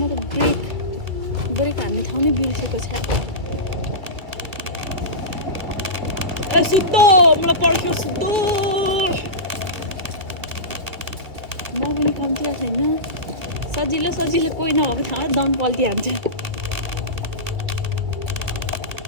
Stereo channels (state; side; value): late; left; 2.2 ms